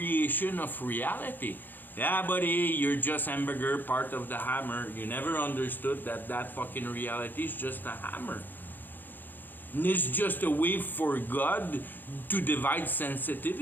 of reality. Yeah, buddy, you're just hamburger, part of the hammer. You never understood that that fucking reality is just a hammer. And it's just a way for God to divide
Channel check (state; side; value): late; right; 0.089 ms